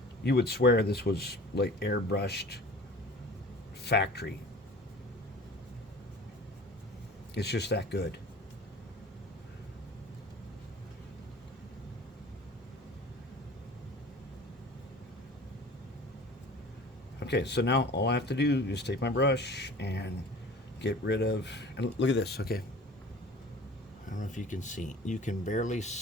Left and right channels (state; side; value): normal; both; correlation 0.43